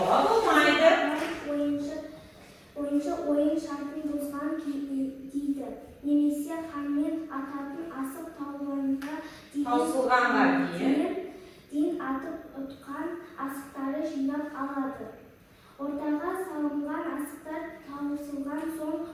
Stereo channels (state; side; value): identical; both; correlation 1.00